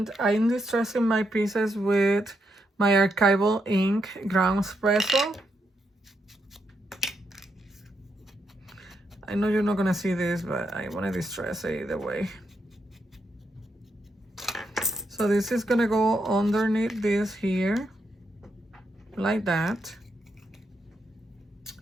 I'm distressing my pieces with my archival ink ground espresso. I know you're not gonna see this, but I wanna distress it either way. So this is gonna go underneath this here, like that.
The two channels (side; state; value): both; normal; correlation 0.81